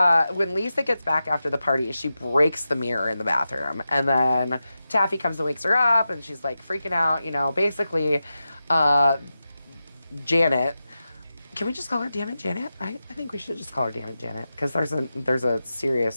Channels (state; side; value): inverted; both; correlation -0.92